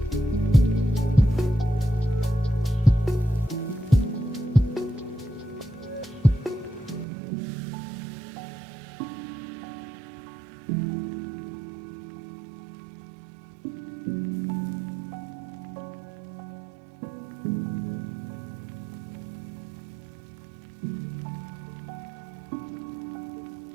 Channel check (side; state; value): left; drops out; at 7.1 s